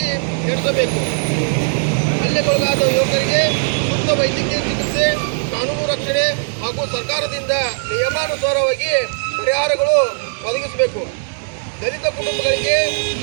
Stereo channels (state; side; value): silent; left; digital silence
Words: ನಡೆಸಬೇಕು. ಹಲ್ಲೆಗೊಳಗಾದ ಯುವಕರಿಗೆ ಸೂಕ್ತ ವೈದ್ಯಕೀಯ ಚಿಕಿತ್ಸೆ, ಕಾನೂನು ರಕ್ಷಣೆ ಹಾಗೂ ಸರ್ಕಾರದಿಂದ ನಿಯಮಾನುಸಾರವಾಗಿ ಪರಿಹಾರಗಳು ಒದಗಿಸಬೇಕು. ದಲಿತ ಕುಟುಂಬಗಳಿಗೆ